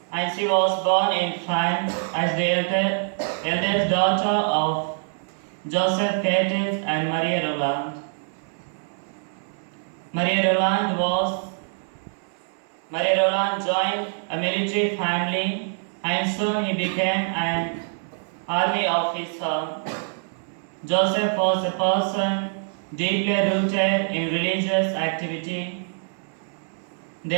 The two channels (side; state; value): left; silent; digital silence